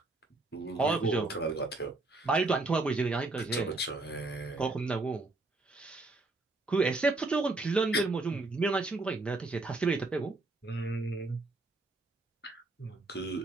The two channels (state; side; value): quieter; left; 3.2 dB